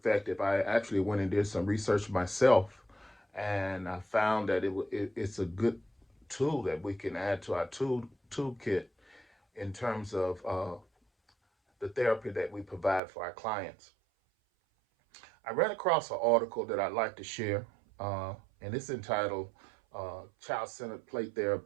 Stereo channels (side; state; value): left; drops out; at 13.0 s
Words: I actually went and did some research myself, and I found that it's a good tool that we can add to our toolkit in terms of the therapy that we provide for our clients. I ran across an article that I'd like to share, and it's entitled Child Centered Play